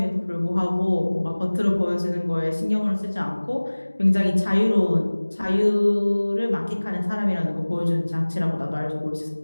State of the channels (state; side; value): inverted; both; correlation -1.00